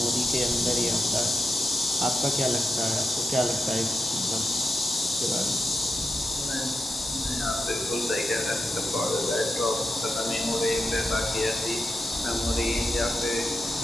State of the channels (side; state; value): both; normal; correlation 0.88